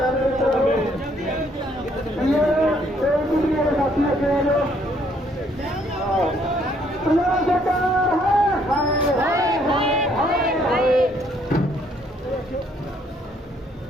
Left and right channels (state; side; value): normal; both; correlation 0.67